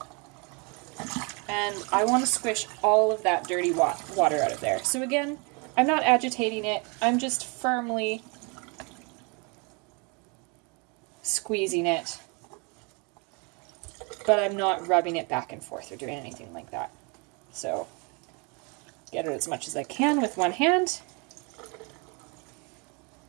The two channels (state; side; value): quieter; left; 31.9 dB